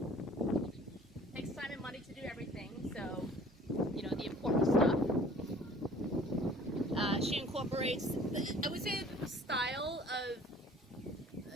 Takes time and money to do everything, so you know, the important stuff. She incorporates, I would say, the style of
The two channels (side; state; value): both; normal; correlation 0.51